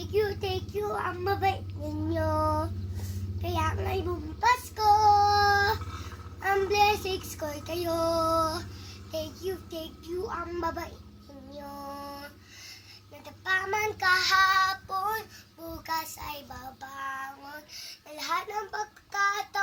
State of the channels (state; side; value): identical; both; correlation 1.00